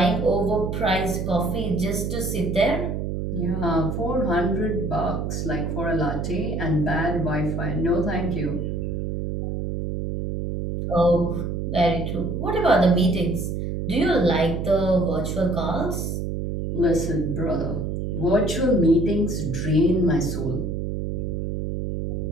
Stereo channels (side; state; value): right; noise; hum, 3 dB below the sound